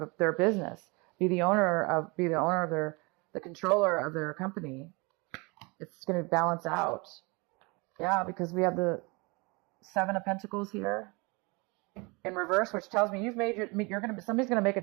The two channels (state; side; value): quieter; left; 28.0 dB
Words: their business, be the owner of the controller of their company. It's going to balance out. Yeah, because we have the Seven of Pentacles here in reverse, which tells me your